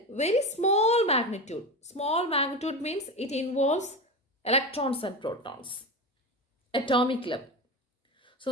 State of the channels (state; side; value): normal; both; correlation 0.23